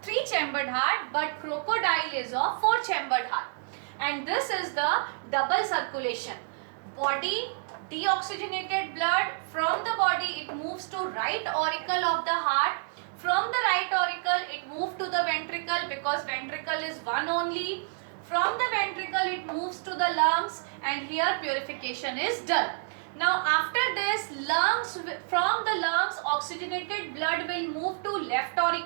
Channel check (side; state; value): left; silent; digital silence